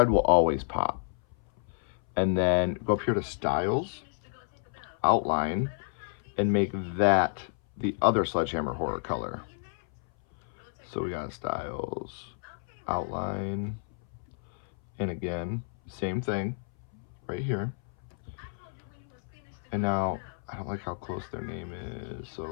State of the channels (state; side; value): silent; right; 57 dB below the other